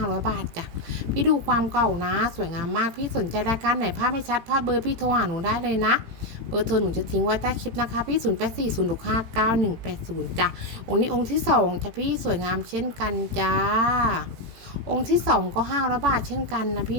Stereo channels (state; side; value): late; left; 18 ms